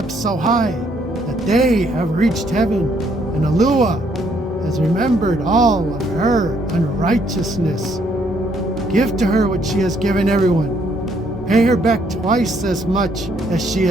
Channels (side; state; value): both; normal; correlation 0.69